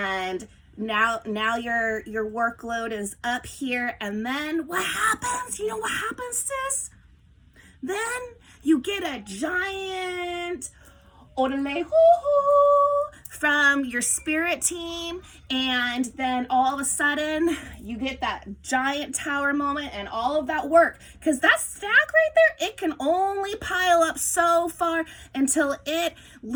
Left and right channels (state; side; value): identical; both; correlation 1.00